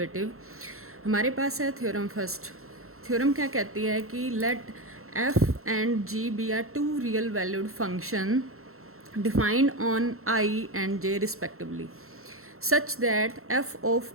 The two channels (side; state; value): left; late; 0.63 ms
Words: हमारे पास है थ्योरम फर्स्ट। थ्योरम क्या कहती है कि let f and g be are two real valued function defined on I and J respectively such that f of